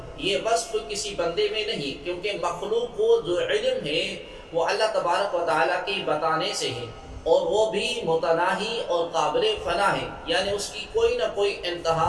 یہ وصف کسی بندے میں نہیں، کیونکہ مخلوق کو جو علم ہے وہ اللہ تبارک و تعالیٰ کے بتانے سے ہے، اور وہ بھی متناہی اور قابل فنا ہے. یعنی اس کی کوئی نہ کوئی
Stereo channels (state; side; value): identical; both; correlation 1.00